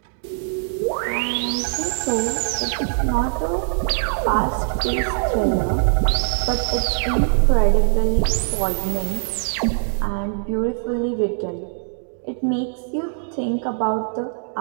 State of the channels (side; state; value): left; silent; digital silence